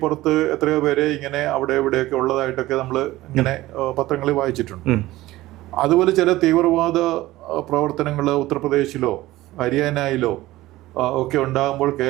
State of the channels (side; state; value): left; quieter; 17.2 dB